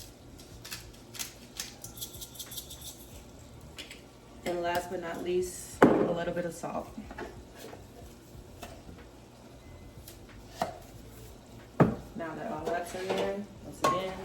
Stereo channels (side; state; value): both; identical; correlation 1.00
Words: And last but not least, a little bit of salt. Now that all that's in there, once again,